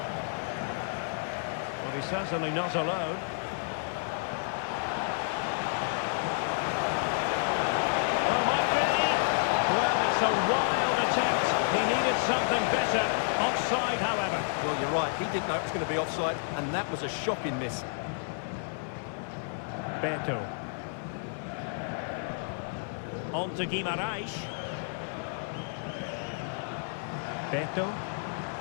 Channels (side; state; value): right; silent; digital silence